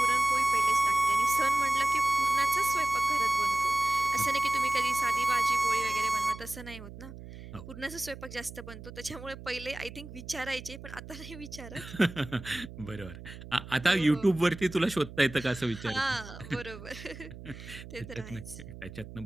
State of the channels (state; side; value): noise; right; hum, 14 dB below the sound